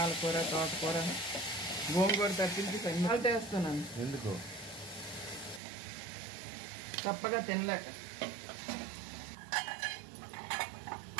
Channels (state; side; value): drops out; left; at 5.6 s